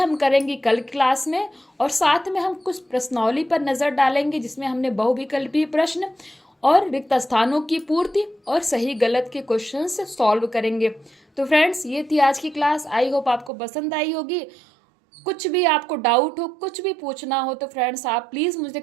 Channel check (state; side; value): drops out; left; at 13.5 s